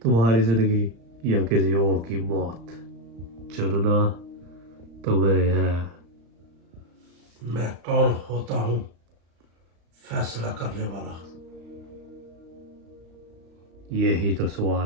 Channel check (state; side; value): late; left; 35 ms